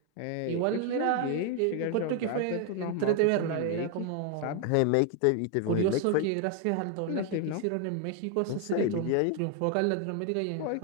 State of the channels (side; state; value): both; different; correlation 0.01